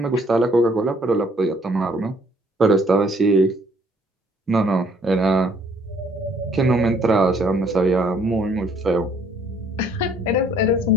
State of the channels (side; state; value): both; normal; correlation 0.62